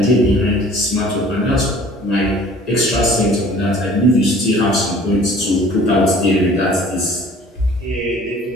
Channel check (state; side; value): normal; both; correlation 0.50